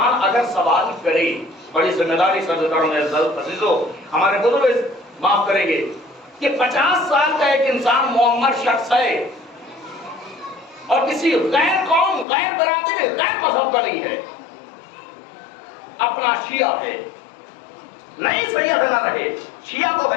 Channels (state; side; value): drops out; right; at 12.2 s